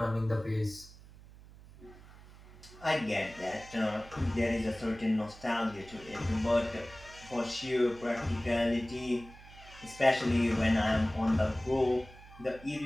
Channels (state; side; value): noise; right; hum, 20 dB below the sound